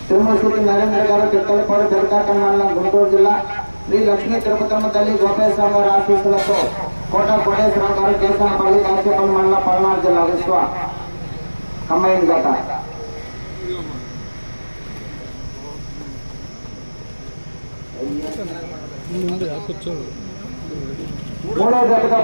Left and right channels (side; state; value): both; inverted; correlation -1.00